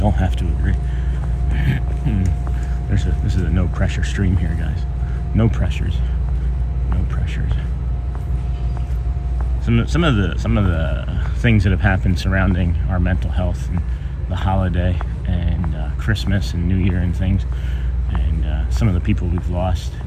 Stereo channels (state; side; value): identical; both; correlation 1.00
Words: have to agree. This is a no pressure stream here, guys. No pressures. No pressures. Some of the things that have happened surrounding our mental health and the holiday and Christmas and New Year and things, and some of the people we've lost,